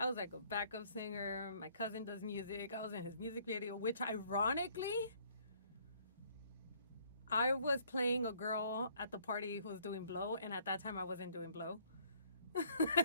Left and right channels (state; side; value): inverted; both; correlation -0.62